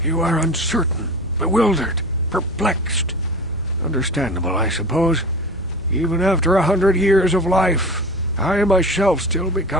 You are uncertain, bewildered, perplexed. Understandable, I suppose. Even after 100 years of life, I myself still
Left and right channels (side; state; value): both; normal; correlation 0.33